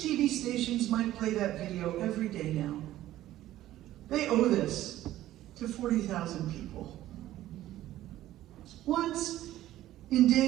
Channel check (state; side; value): quieter; left; 14.2 dB